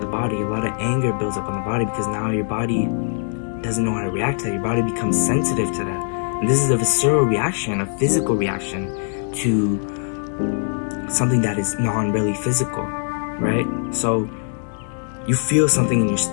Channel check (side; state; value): right; silent; 64 dB below the other